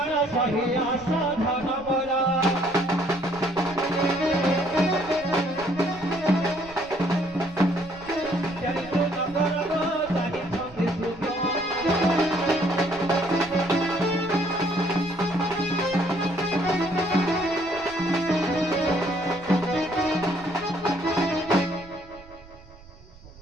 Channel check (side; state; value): right; noise; rumble, 21 dB below the sound